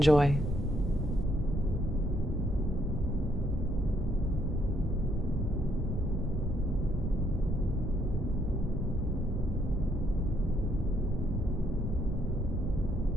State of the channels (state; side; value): normal; both; correlation 0.71